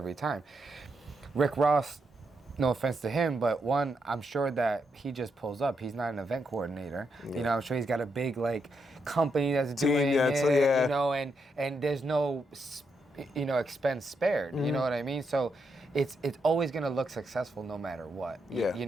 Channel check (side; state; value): both; normal; correlation 0.81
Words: time. Rick Ross, no offense to him, but one, I'm sure that he just pulls up. He's not an event coordinator. You know, I'm sure he's got a big like company that's doing it, you know, and there's no, you know, expense spared. You know what I mean? So it's always gonna look successful no matter what. You